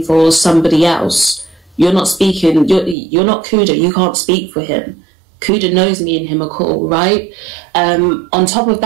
for somebody else. You're not speaking. You're not Kuda. You can't speak for him. Kuda knows me and him are cool, right? On top of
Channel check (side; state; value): left; drops out; at 3.0 s